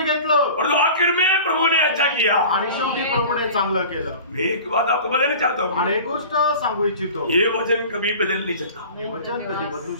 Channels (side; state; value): both; inverted; correlation -0.39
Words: घेतलं, और तो आखिर में प्रभु ने अच्छा किया, आणि शेवटी प्रभूने चांगलं केलं। मैं एक बात आपको बदलना चाहता हूँ, आणि एक गोष्ट सांगू इच्छितो, ये वचन कभी बदल नहीं सकता। हे वचन कधी बदलू